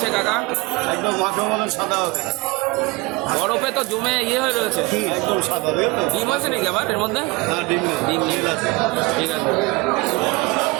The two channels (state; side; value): quieter; left; 24.9 dB